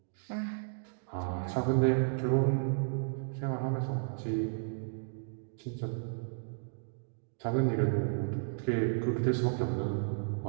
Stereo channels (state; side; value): silent; left; digital silence